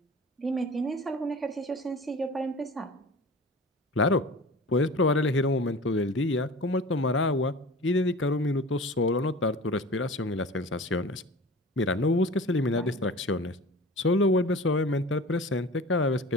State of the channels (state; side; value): normal; both; correlation 0.38